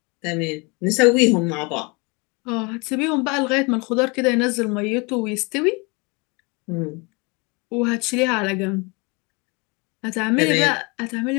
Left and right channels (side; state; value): right; quieter; 28.9 dB